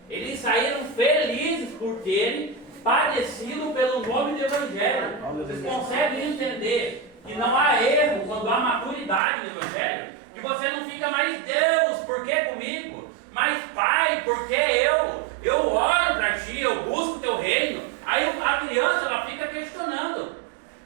Eles saíram felizes por terem padecido pelo nome do Evangelho. Vocês conseguem entender que não há erro quando há maturidade no Evangelho? Que você não fica mais, Deus, por que comigo? Mas Pai, por que eu? Eu oro para ti, eu busco o teu reino. Aí a criança, ela fica questionando.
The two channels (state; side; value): drops out; left; at 9.2 s